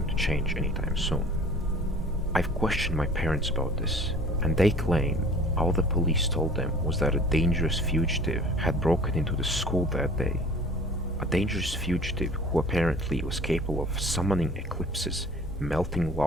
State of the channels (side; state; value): both; normal; correlation 0.47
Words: to change anytime soon. I've questioned my parents about this, and they claim all the police told them was that a dangerous fugitive had broken into the school that day. A dangerous fugitive who apparently was capable of summoning eclipses, melting